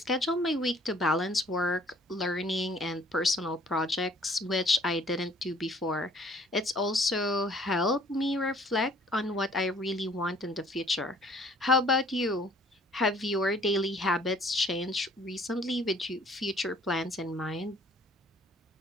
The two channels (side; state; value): both; normal; correlation 0.57